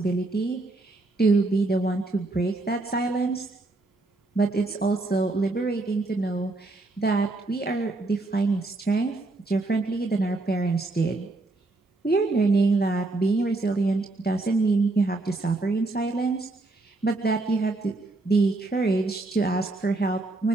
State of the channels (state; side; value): quieter; left; 3.1 dB